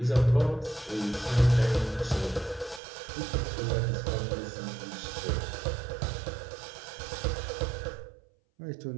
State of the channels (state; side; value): drops out; left; at 2.8 s